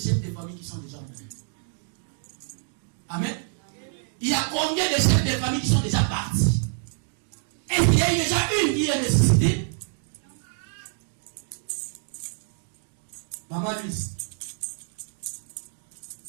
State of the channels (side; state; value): left; silent; 60 dB below the other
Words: de famille qui sont déjà morts? Amen. Il y a combien de chefs de famille qui sont déjà partis? Est-ce qu'il y a déjà une qui est ressuscitée? Maman Luce.